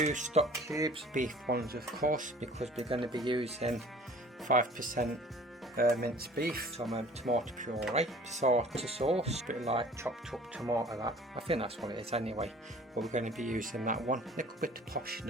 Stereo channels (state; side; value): normal; both; correlation 0.48